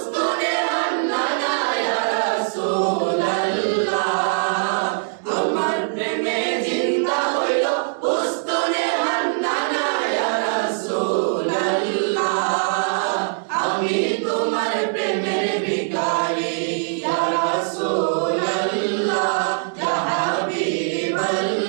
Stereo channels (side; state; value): left; silent; digital silence